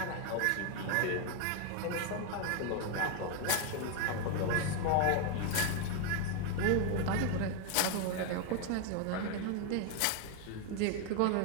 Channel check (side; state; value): both; different; correlation 0.01